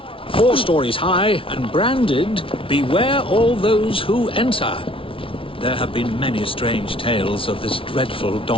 4 stories high and branded, "Beware all those who enter." There have been many strange tales of this dreadful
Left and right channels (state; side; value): late; right; 0.26 ms